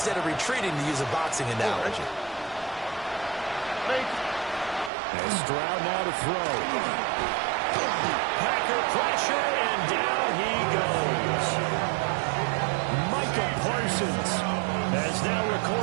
of retreating, to use a boxing analogy. And Stroud now to throw. Packer pressure, and down he goes. Micah Parsons has now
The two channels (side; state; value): left; drops out; at 4.9 s